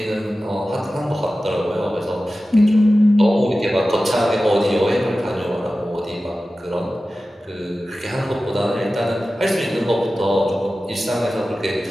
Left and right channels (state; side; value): normal; both; correlation 0.95